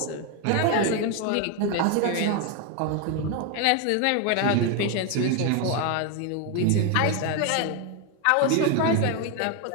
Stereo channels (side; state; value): both; different; correlation 0.01